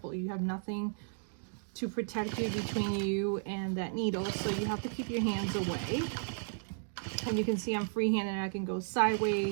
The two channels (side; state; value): left; silent; digital silence